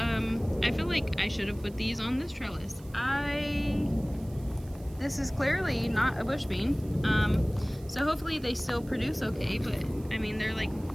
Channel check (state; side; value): noise; right; hiss, 25 dB below the sound